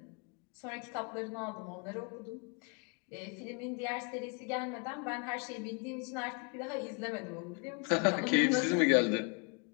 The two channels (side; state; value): right; quieter; 34.6 dB